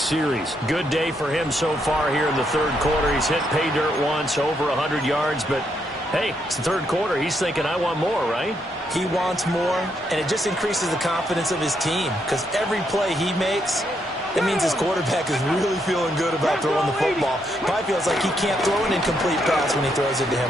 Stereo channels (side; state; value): both; normal; correlation 0.77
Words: series. Good day for him so far here in the 3rd quarter. He's hit pay dirt once, over 100 yards, but hey, it's the 3rd quarter. He's thinking, I want more, right? He wants more, and it just increases the confidence of his team because every play he makes, it means his quarterback is really feeling good about throwing the football. Probably feels like he can't throw an incomplete pass when he throws it to